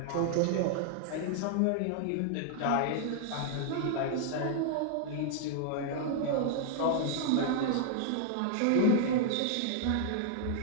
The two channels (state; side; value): different; both; correlation -0.01